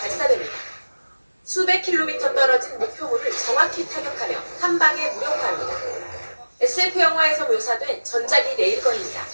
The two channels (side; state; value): both; inverted; correlation -1.00